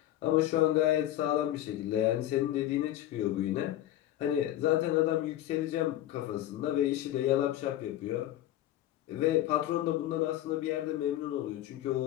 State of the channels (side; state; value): right; quieter; 13.5 dB